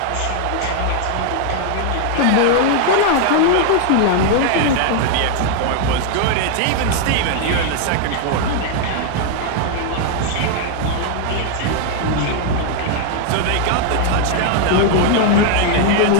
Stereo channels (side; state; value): both; different; correlation 0.00